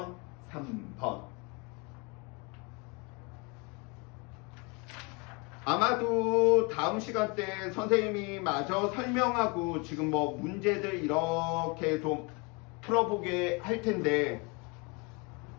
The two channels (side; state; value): right; quieter; 29.9 dB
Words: 3번. 아마도 다음 시간 때 선생님이 마저 설명하고 지금 뭐 문제들 이렇게 좀 풀어보게 할 텐데